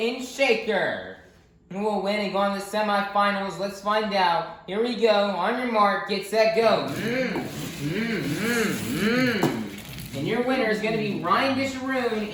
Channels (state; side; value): identical; both; correlation 1.00